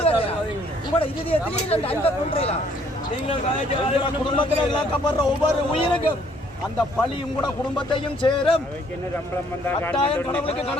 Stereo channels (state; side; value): normal; both; correlation 0.63